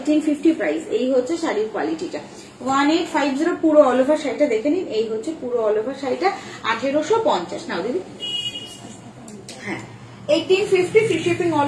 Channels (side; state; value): both; identical; correlation 1.00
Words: প্রাইস। এই হচ্ছে শাড়ির কোয়ালিটিটা, 1850 পুরো অল ওভার শাড়িটা দেখে নিন। এই হচ্ছে পুরো অল ওভার শাড়িটা 1850। নাও দিদি, হ্যাঁ 1850 free shipping